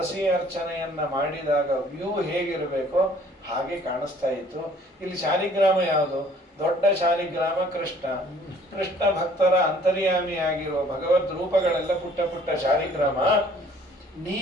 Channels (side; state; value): both; normal; correlation 0.56